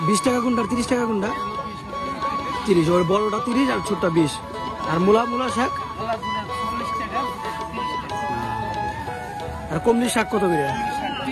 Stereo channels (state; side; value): identical; both; correlation 1.00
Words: 20 টাকা কোনটা, 30 টাকা কোনটা? 30। ওর বড়টা 30 আর ছোটটা 20। আর মূলা শাক? আর কমলি শাক কত করে?